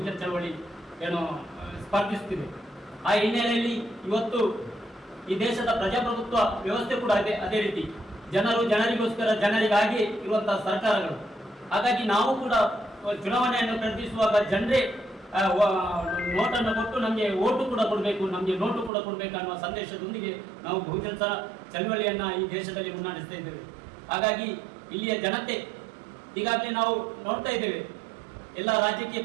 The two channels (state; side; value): drops out; left; at 18.9 s